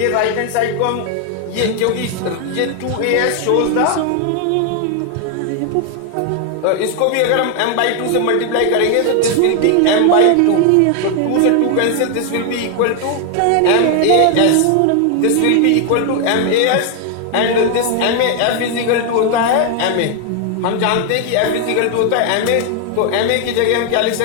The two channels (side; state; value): both; different; correlation 0.00